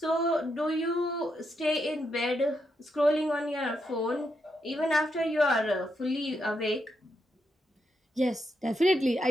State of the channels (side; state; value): both; normal; correlation 0.82